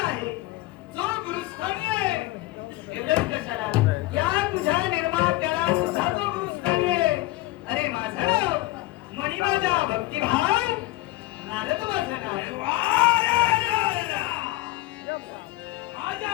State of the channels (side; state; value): right; quieter; 18.3 dB